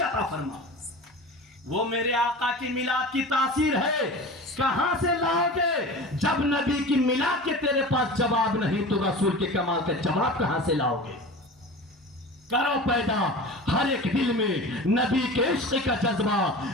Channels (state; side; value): normal; both; correlation 0.34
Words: अता फरमा। वो मेरे आका की मिलाद की तासीर है, कहां से लाओगे? जब नबी की मिलाद के तेरे पास जवाब नहीं तो रसूल के कमाल का जवाब कहां से लाओगे? करो पैदा हर एक दिल में नबी के इश्क का जज्बा,